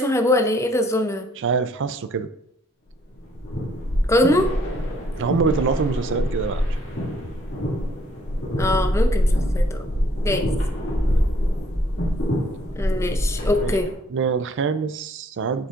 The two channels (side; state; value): both; normal; correlation 0.63